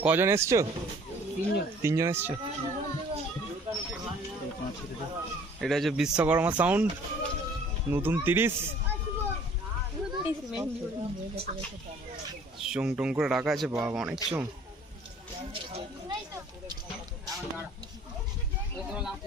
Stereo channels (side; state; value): both; normal; correlation 0.53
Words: কজন এসছো? তিনজন এসছো। এটা হচ্ছে বিশ্বকর্মা সাউন্ড, নতুন 30। চোং টোং করে রাখা আছে, বাবা অনেক চোং।